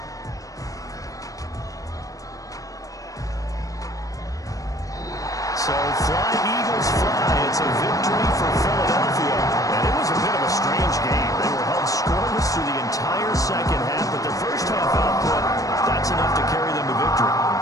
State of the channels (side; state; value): right; late; 0.16 ms